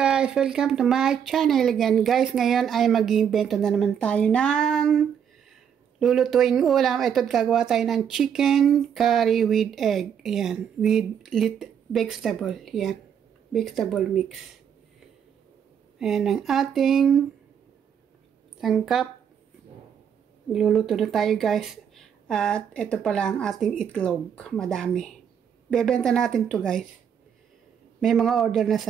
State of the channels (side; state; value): left; quieter; 8.2 dB